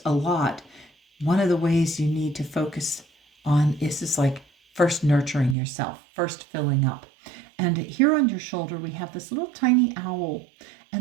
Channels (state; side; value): drops out; left; at 5.6 s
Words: a lot, one of the ways you need to focus on is this, like, first nurturing yourself, first filling up. And here on your shoulder, we have this little tiny owl.